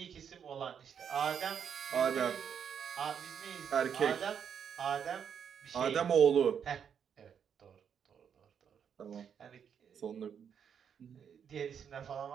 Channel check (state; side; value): quieter; left; 7.7 dB